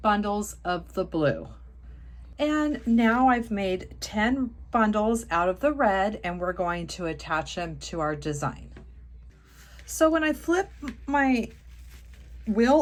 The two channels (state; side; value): identical; both; correlation 1.00